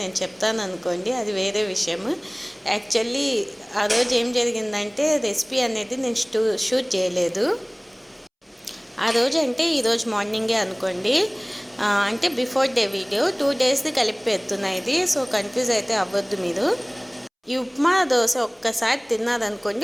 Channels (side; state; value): both; identical; correlation 1.00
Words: చెప్తాను అనుకోండి, అది వేరే విషయం. యాక్చువల్లీ ఆ రోజు ఏం జరిగిందంటే రెసిపీ అనేది నేను షూట్ చేయలేదు. ఆ రోజు అంటే ఈరోజు మార్నింగే అనుకోండి, అంటే బిఫోర్ డే వీడియో 2 daysది కలిపి పెడుతున్నా ఇది. సో కన్ఫ్యూజ్ అయితే అవ్వద్దు మీరు. ఈ ఉప్మా దోశ ఒక్కసారి తిన్నారనుకోండి,